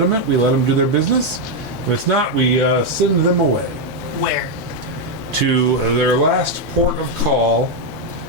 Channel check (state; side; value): normal; both; correlation 0.02